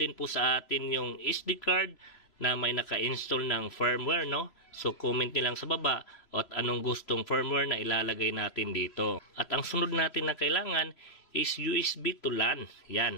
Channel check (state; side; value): late; right; 3.0 ms